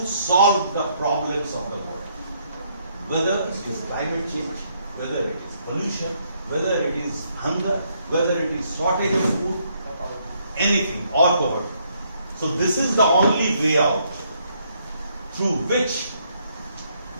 solve the problems of the world. Whether it is climate change, whether it is pollution, whether it is hunger, whether it is shortage of food, anything or poverty. So this is the only way out through which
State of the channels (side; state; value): both; inverted; correlation -0.72